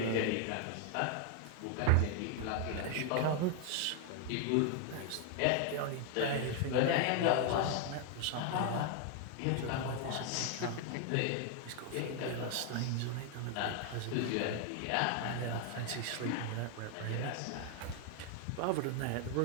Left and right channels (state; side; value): different; both; correlation 0.00